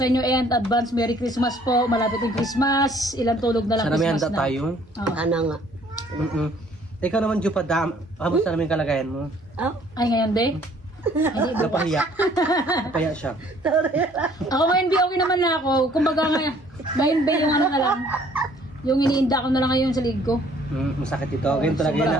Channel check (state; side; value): normal; both; correlation 0.59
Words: inyo and advance Merry Christmas po. Malapit yung Christmas. Ilang tulog na lang Sana may Christmas handa na. tayo. Ano nga? Ikaw naman, Jo, kamusta namin yung kalagayan mo? Oh? Ay, ngayon, de? Hindi, bukas. Napahiya. Napahiya siya. Ako ngayon, di okay naman na ako. Kumbaga ngayon, yung ano na lang. Yung iniinda ko na lang ngayon sa lig ko. Masakit ito. Ganyan talaga yun.